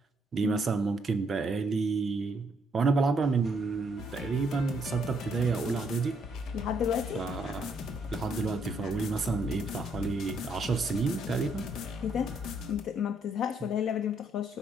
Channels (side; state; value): both; normal; correlation 0.71